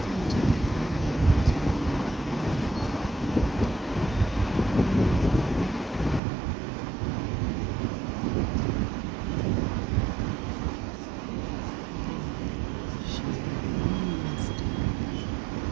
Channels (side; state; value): left; drops out; at 6.2 s